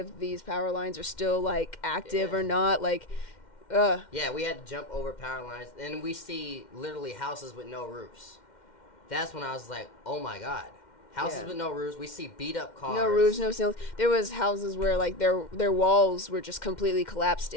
if these power lines are still, like, active or not. Like, Yeah, we had to jump over power lines, and we see literally houses with no roofs. That's when I was like, oh, my God. Houses with no roofs. We see beat up cars. No roofs, no ceilings. There was houses where like their walls were just completely collapsed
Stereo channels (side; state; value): right; late; 2.1 ms